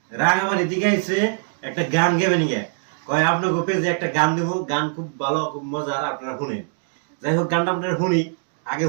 রাঙামাটি থেকে আইছে, একটা গান গেবেন গিয়া কয় আপনাকে পেজে একটা গান দেবো, গান খুব ভালো খুব মজার, আপনারা শুনেন। যাই হোক গানটা আপনারা শুনি, আগে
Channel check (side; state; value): left; silent; digital silence